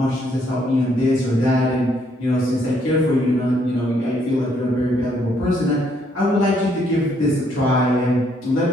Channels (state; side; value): normal; both; correlation 0.70